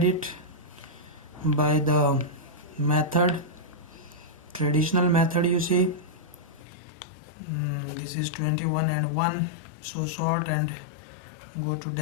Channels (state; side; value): drops out; right; at 6.6 s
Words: it by the method, traditional method. You see, this is 21 and 1, so sort and go to